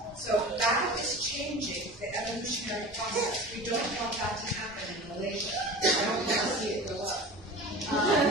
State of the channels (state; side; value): normal; both; correlation 0.35